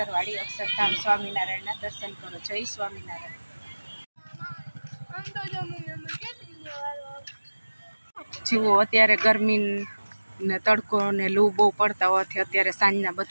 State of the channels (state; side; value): inverted; both; correlation -1.00